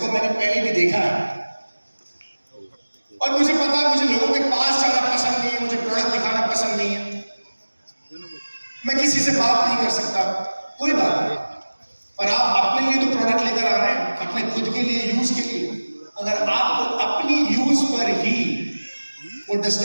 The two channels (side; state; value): both; inverted; correlation -1.00